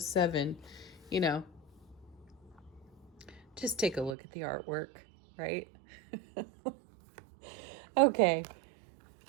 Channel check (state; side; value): drops out; left; at 4.2 s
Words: 7, you know, just take a look at the artwork, right? Okay.